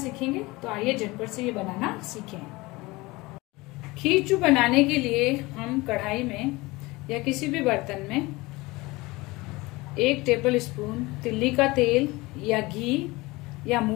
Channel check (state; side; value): quieter; right; 22.1 dB